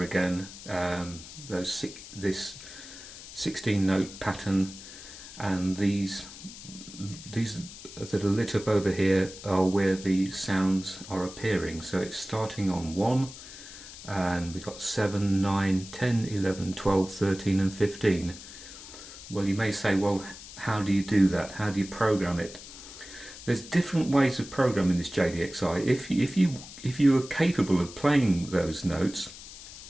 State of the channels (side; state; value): left; noise; hiss, 15 dB below the sound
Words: again this 16-note pattern, and these that are lit up over here are where the sounds are appearing. So it's starting on 1, and we've got 7, 9, 10, 11, 12, 13 and 15. Well, you may say, well, how do you do that? How do you program it? There's different ways of programming this JDXI. If you are capable of playing those notes,